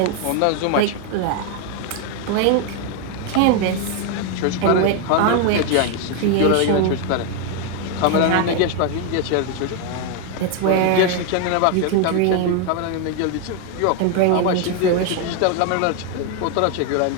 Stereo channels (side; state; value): both; different; correlation 0.01